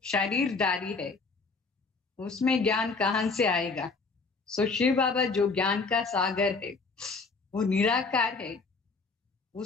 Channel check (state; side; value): quieter; right; 4.3 dB